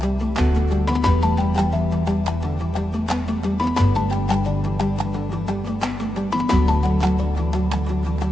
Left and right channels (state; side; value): normal; both; correlation 0.88